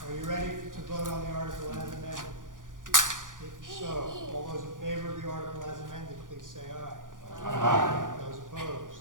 you ready to vote on the article as amended? If so, all those in favor of the article as amended, please say aye. Aye. Those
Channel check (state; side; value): late; left; 0.88 ms